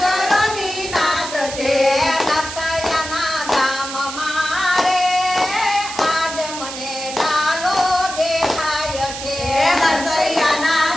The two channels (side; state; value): right; noise; hiss, 9 dB below the sound